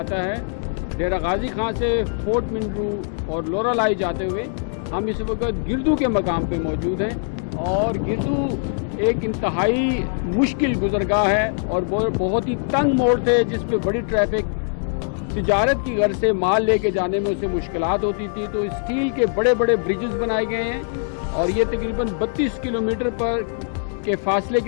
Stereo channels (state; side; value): silent; right; digital silence